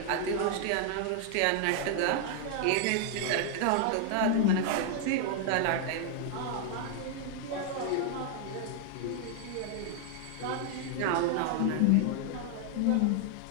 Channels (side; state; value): both; different; correlation 0.00